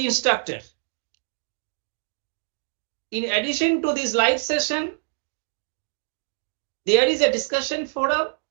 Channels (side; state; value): left; silent; digital silence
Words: instructor. In addition to this live session, there is a discussion forum